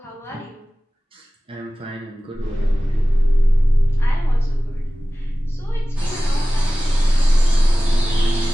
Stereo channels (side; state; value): both; normal; correlation 0.97